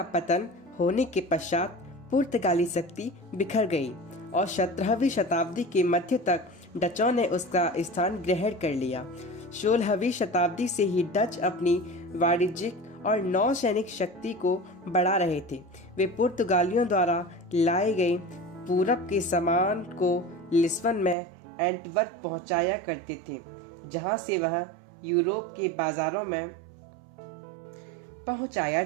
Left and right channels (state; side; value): drops out; left; at 21.2 s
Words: पतन होने के पश्चात पुर्तगाली शक्ति बिखर गई और 17वीं शताब्दी के मध्य तक डचों ने उसका स्थान ग्रहण कर लिया। 16वीं शताब्दी से ही डच अपनी वाणिज्यिक और नौसैनिक शक्ति को बढ़ा रहे थे। वे पुर्तगालियों द्वारा लाए गए पूरब के सामान को लिस्बन में एंटवर्प पहुंचाया करते थे, जहां से वह यूरोप के बाजारों में पहुंचाया